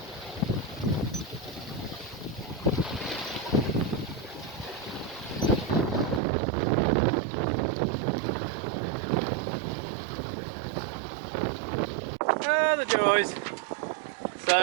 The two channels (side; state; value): left; drops out; at 6.2 s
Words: Ah, the joys.